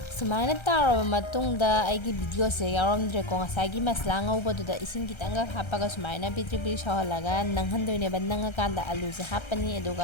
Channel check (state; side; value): late; right; 1.3 ms